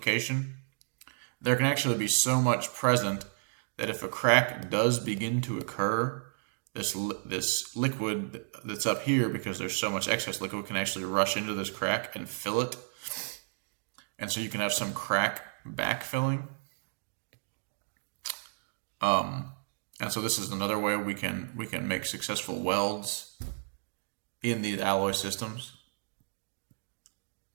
there can actually be so much present that if a crack does begin to occur, this liquid that's up here, because there's so much excess liquid, can actually rush into this crack and fill it. And so you can have some crack backfilling. And so this is another way we can make successful welds in these alloy systems.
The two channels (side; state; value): left; silent; digital silence